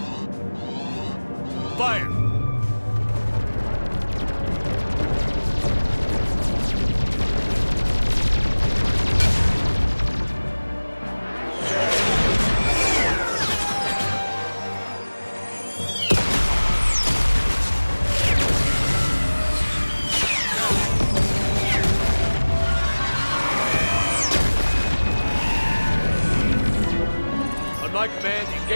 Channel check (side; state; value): both; inverted; correlation -1.00